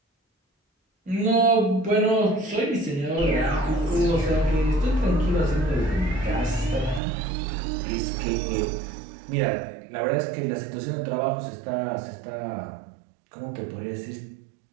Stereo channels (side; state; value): left; drops out; at 7.0 s